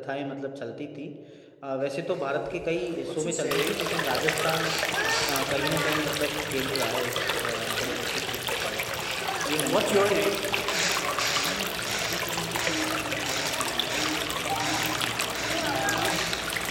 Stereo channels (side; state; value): both; identical; correlation 1.00